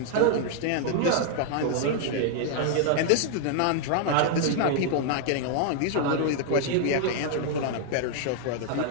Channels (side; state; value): both; different; correlation -0.01